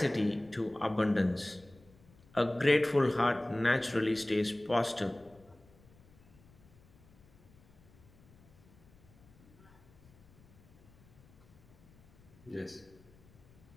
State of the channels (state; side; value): noise; left; rumble, 26 dB below the sound